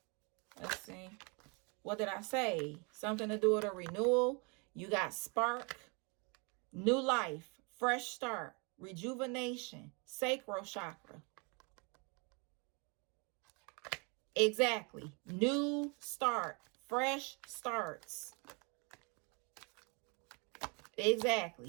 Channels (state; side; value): quieter; left; 32.3 dB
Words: Let's see. What did I say? Something to do with a renewal. You got spark, new life, fresh start, rejuvenation, sacral chakra. Exactly. New start, fresh starts.